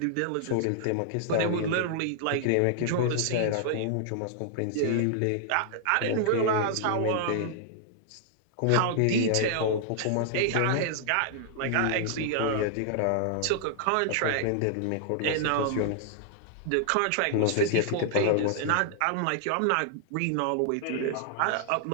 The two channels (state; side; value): different; both; correlation -0.01